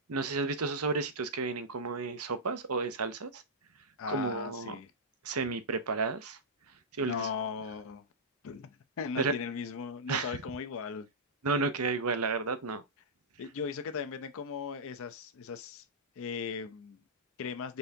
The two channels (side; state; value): both; normal; correlation -0.12